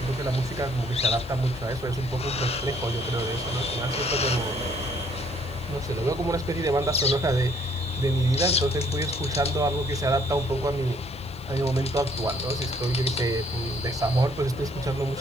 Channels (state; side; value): noise; left; hiss, 27 dB below the sound